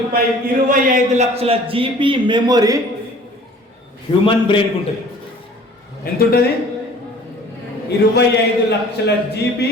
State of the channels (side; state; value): both; normal; correlation 0.49